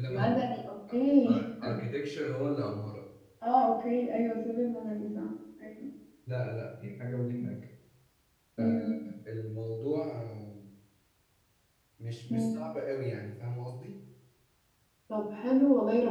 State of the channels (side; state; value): both; identical; correlation 1.00